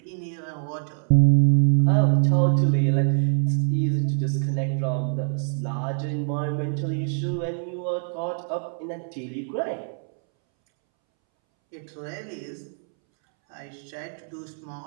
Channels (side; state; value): left; silent; 62 dB below the other